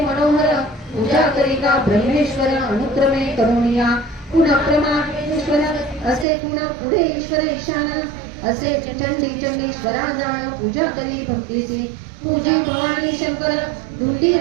मनोहर पूजा करी का ब्रह्मेश्वर अनुक्रमे करुणिया पुनःप्रमाश्वर असे पुन्हा पुढे ईश्वर ईशान असे चंडी चंडीश्वरा जाण पूजा करी भक्तीसी पूजी भवानी शंकर धुंडी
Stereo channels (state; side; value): drops out; left; at 6.2 s